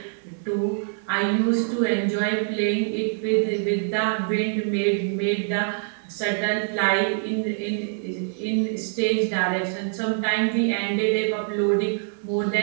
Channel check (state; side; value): silent; left; 58 dB below the other